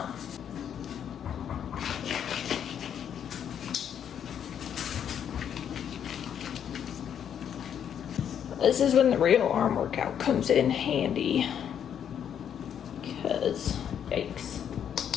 This is when the real arm workout comes in handy. Because, yikes.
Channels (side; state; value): right; quieter; 8.8 dB